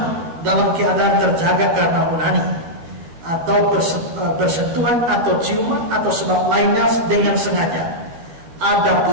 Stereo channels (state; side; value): late; left; 12 ms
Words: dalam keadaan terjaga karena onani atau bersentuhan atau ciuman atau sebab lainnya dengan sengaja.